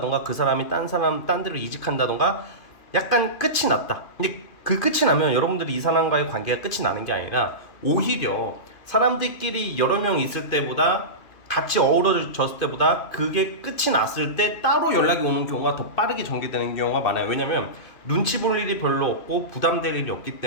그 사람이 딴 데로 이직한다던가 약간 끝이 났다. 근데 그 끝이 나면 여러분들이 이 사람과의 관계가 끝이 나는 게 아니라 오히려 사람들끼리 여러 명 있을 때보다 같이 어우러졌을 때보다 그게 끝이 났을 때 따로 연락이 오는 경우가 더 빠르게 전개되는 경우가 많아요. 왜냐면 눈치 볼 일이 별로 없고 부담될 일이 없기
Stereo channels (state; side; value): late; right; 2.7 ms